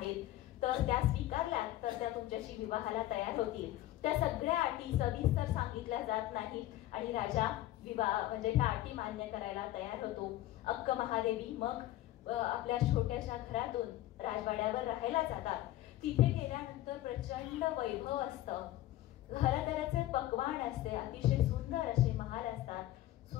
तर त्या स्वीकारल्या तर त्या तुमच्याशी विवाहाला तयार होतील. त्या सगळ्या अटी सविस्तर सांगितल्या जात नाहीत आणि राजा विवाह म्हणजे ह्या अटी मान्य करायला तयार होतो. अक्क महादेवी मग आपल्या छोट्याशा घरातून राजवाड्यावर राहायला जातात. तिथे गेल्यानंतर प्रचंड वैभव असतं, घरादाराचे पकवान असते, अतिशय सुंदर असे महाल असतात,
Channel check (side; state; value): right; quieter; 14.9 dB